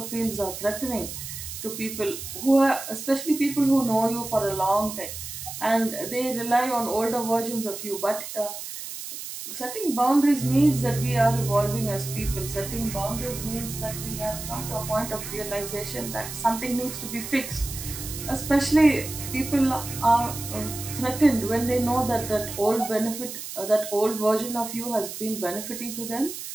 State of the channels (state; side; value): noise; right; hiss, 9 dB below the sound